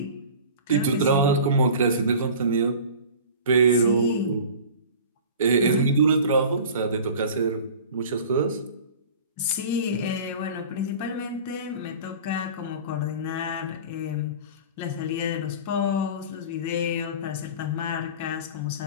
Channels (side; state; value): both; inverted; correlation -0.39